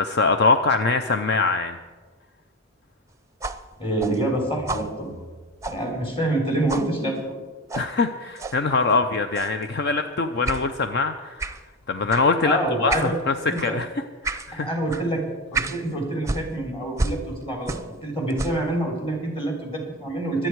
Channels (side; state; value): both; normal; correlation 0.16